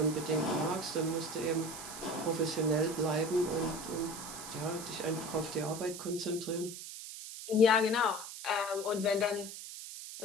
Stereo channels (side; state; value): right; noise; hiss, 10 dB below the sound